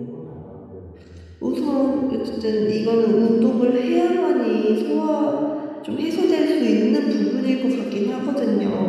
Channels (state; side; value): identical; both; correlation 1.00